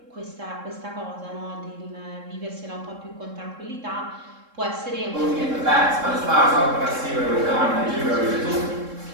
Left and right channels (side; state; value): left; late; 3.7 ms